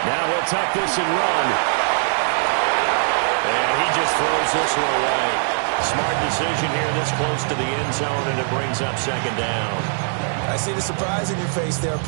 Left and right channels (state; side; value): silent; left; digital silence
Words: Now he'll tuck this and run. And he just throws this one away. Smart decision here this close to the end zone, and it brings up second down. I see the surprise in your face there,